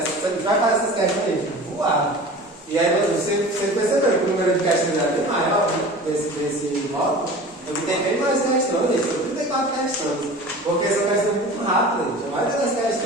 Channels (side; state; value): both; normal; correlation 0.38